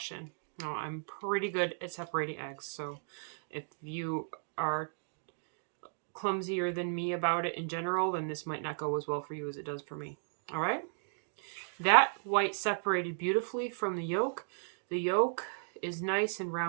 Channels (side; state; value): left; silent; digital silence